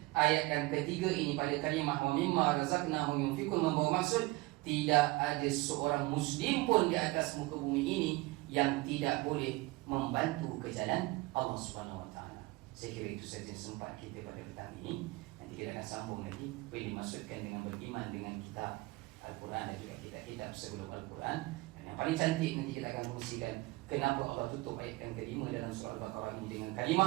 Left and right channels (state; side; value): quieter; left; 22.0 dB